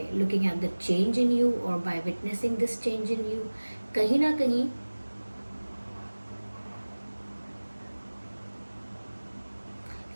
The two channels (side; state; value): both; inverted; correlation -1.00